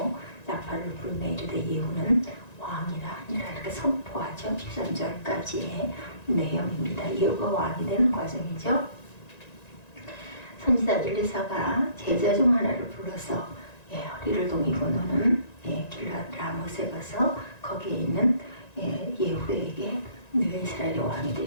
나팔을 불며 이르되 예후는 왕이라 하니라. 이렇게 선포하죠. 13절까지의 내용입니다. 예후가 왕이 되는 과정이죠. 선지자 엘리사가 제자 중 하나를 불러서 허리를 동이고 너는 길르앗 라못에 가서 거기에 있는 예후에게 네가 이스라엘의 왕이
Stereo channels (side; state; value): right; late; 1.9 ms